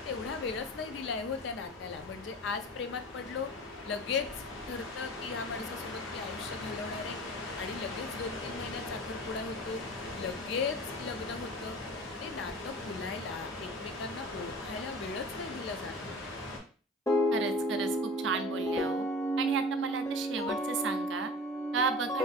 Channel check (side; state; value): both; normal; correlation 0.38